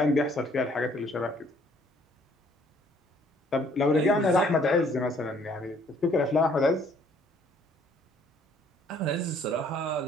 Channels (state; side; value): normal; both; correlation 0.61